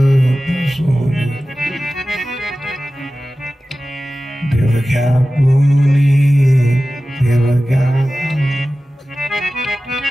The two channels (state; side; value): normal; both; correlation 0.95